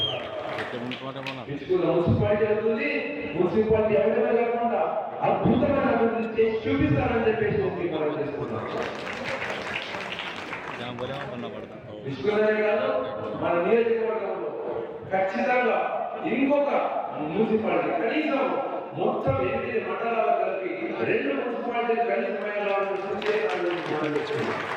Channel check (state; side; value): identical; both; correlation 1.00